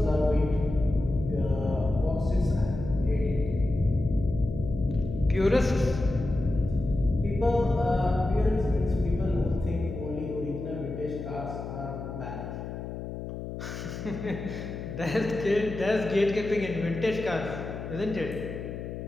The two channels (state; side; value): noise; left; hum, 8 dB below the sound